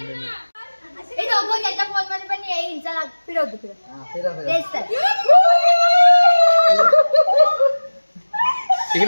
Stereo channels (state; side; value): inverted; both; correlation -1.00